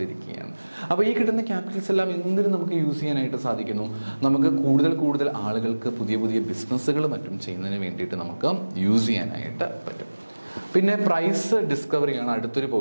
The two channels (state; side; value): inverted; both; correlation -1.00